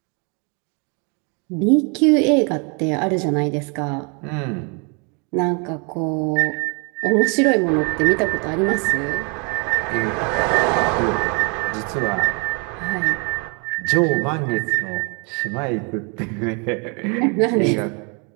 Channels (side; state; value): left; quieter; 34.4 dB